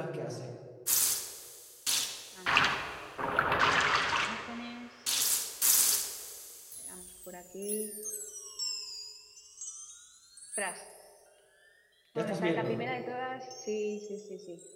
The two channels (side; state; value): both; identical; correlation 1.00